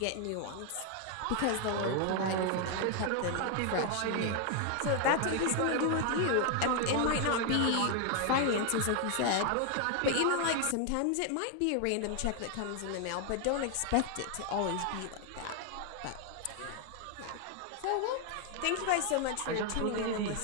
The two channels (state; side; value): different; both; correlation 0.00